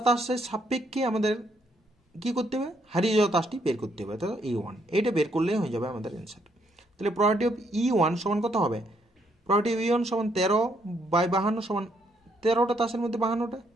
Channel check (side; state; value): both; normal; correlation 0.72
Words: তাসের সাপেক্ষে আমাদের কি করতে হবে, হারিয়ে যাওয়া তাসটি বের করতে হবে, তাহলে ই1 এইটা বের করলেই হয়ে যাবে আমাদের অ্যান্সার। তাহলে প্রবাবিলিটি অফ ই1 সমান কত হবে, প্রবাবিলিটি অফ ই1 সমান 13 বাই 52 সমান 13টা তাসের মধ্যে 52টা,